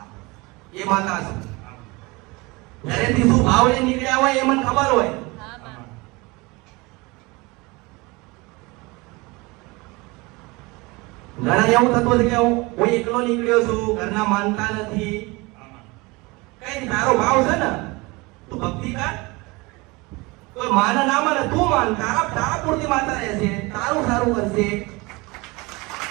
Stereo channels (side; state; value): left; quieter; 24.5 dB